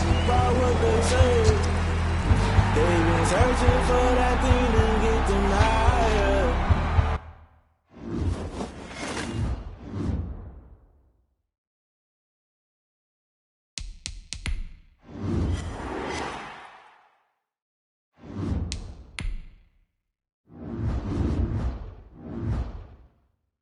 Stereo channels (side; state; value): both; identical; correlation 1.00